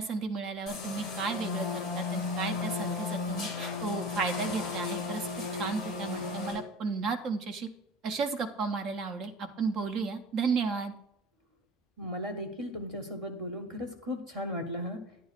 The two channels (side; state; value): both; normal; correlation 0.37